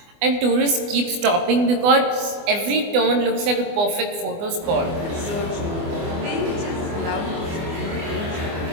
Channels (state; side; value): late; left; 24 ms